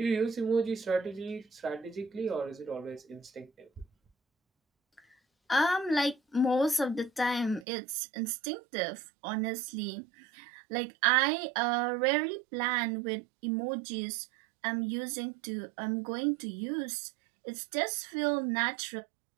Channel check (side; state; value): left; drops out; at 7.7 s